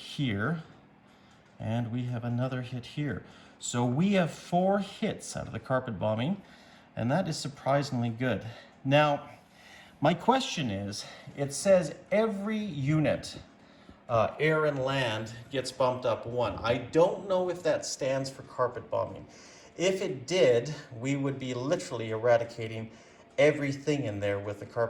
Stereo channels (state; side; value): identical; both; correlation 1.00